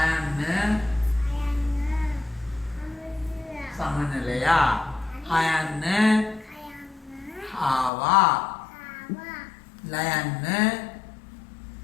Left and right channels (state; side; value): drops out; right; at 7.9 s